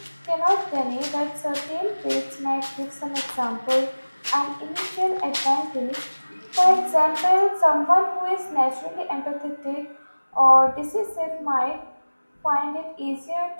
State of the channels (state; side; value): inverted; both; correlation -1.00